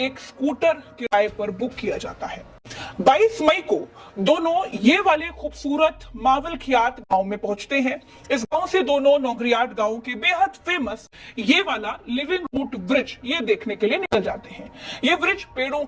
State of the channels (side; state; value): both; identical; correlation 1.00